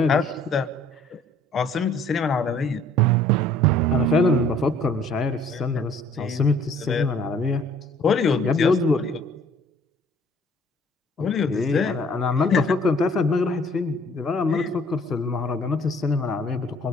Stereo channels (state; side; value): normal; both; correlation 0.57